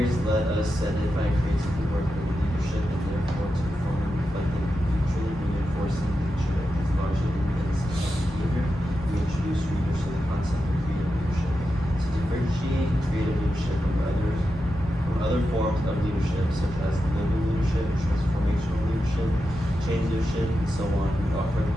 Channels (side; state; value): both; normal; correlation 0.89